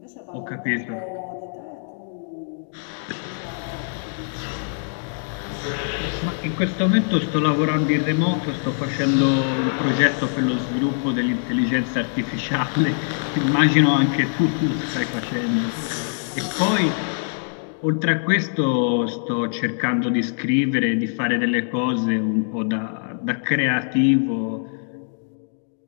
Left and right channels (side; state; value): right; silent; digital silence